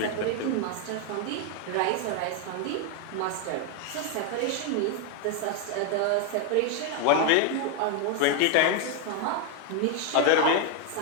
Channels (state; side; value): different; both; correlation 0.01